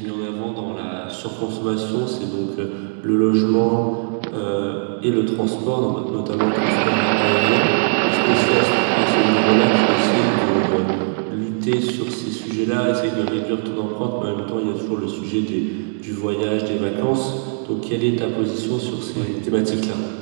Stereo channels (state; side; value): silent; left; digital silence